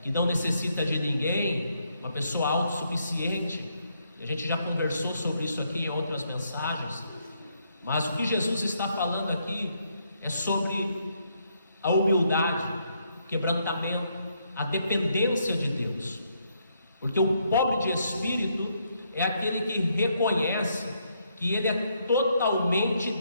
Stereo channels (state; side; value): inverted; both; correlation -0.75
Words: que não necessita de ninguém, uma pessoa autossuficiente. A gente já conversou sobre isso aqui em outras mensagens. Mas o que Jesus está falando aqui é sobre a humildade, o quebrantamento, a dependência de Deus. Porque o pobre de espírito é aquele que reconhece que ele é totalmente